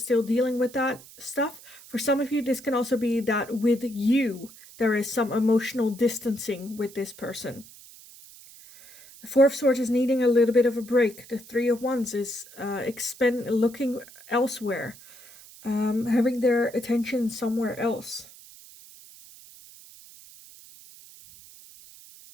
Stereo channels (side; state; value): right; noise; hiss, 20 dB below the sound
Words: dealing with that stuff. For some of you, this can also be that with you, there is some emotional distancing with this person. The 4 of Swords is needing a little bit of a break. The 3 of Wands is looking elsewhere, having their attention somewhere else.